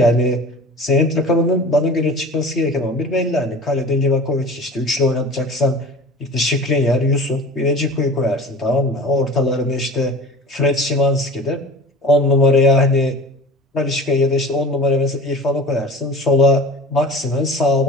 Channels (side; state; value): both; normal; correlation 0.39